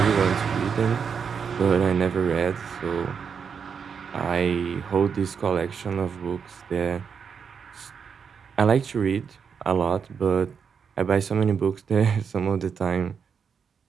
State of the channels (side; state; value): left; quieter; 6.5 dB